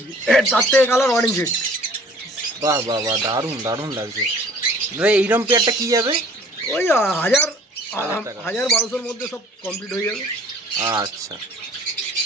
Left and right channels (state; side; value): normal; both; correlation 0.52